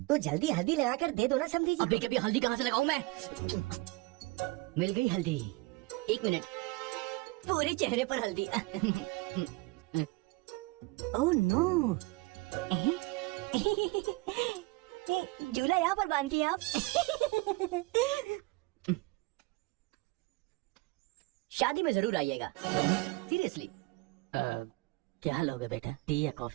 तो जल्दी हल्दी लगाकर दे दो ना समझी जी। अभी कभी हल्दी कहाँ से लगाऊं मैं? मिल गई हल्दी। एक मिनट, पूरे चेहरे पर हल्दी। ओह नो, झूला यहाँ पर बांधती हैं आप? शादी में जरूर आइएगा, सीरियसली। क्या लोगे बेटा, टी या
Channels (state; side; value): quieter; left; 23.6 dB